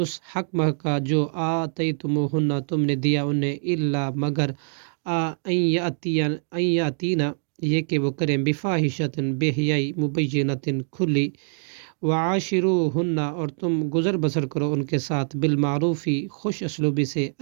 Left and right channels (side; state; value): left; silent; 62 dB below the other